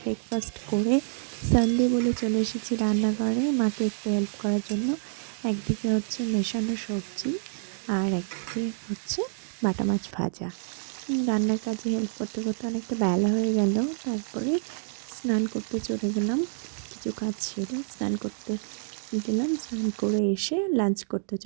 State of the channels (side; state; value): left; silent; digital silence